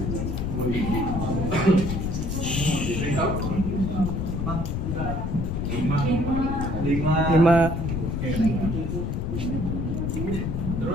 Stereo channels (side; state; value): left; noise; rumble, 2 dB below the sound